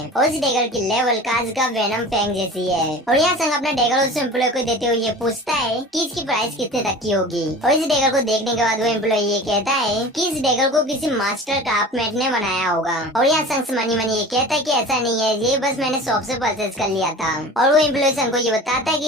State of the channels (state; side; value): normal; both; correlation 0.37